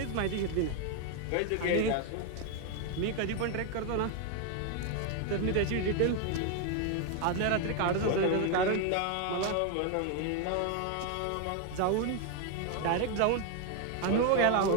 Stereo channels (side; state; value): both; different; correlation 0.01